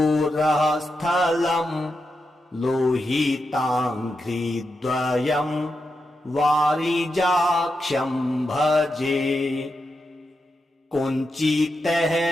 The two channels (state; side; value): normal; both; correlation 0.87